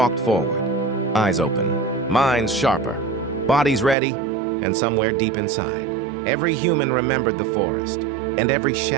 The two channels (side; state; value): left; drops out; at 4.0 s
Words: forward, eyes open, minds sharper, bodies ready, and somewhere deep inside, every human remembered the forest, and every